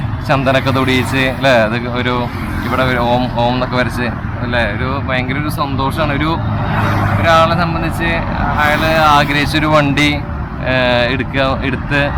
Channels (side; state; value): both; identical; correlation 1.00